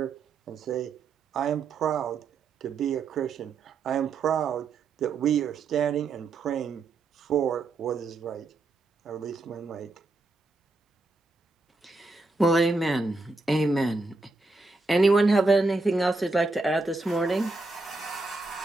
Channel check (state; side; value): quieter; left; 3.5 dB